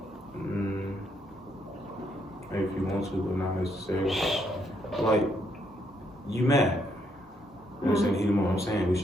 Maybe if you want to, but not necessarily. Like, you mad. You understand the heat of the moment. I'm saying we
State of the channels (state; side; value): normal; both; correlation 0.74